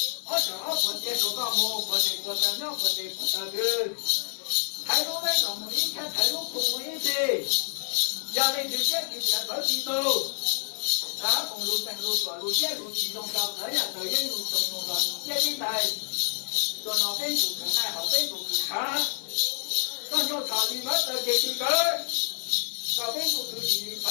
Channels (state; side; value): silent; right; 59 dB below the other